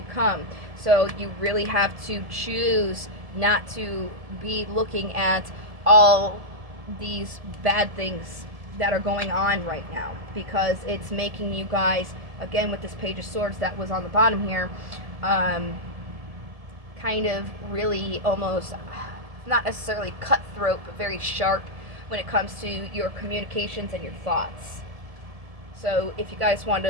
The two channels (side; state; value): left; late; 1.7 ms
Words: come. So you really have to choose not to be looking at all these bad things that are going on right now, because it's making you guys, again with this Page of Swords that was on the bottom here, kind of really almost not necessarily cutthroat, but very sharp when it comes to your communications and your thoughts. So if you guys want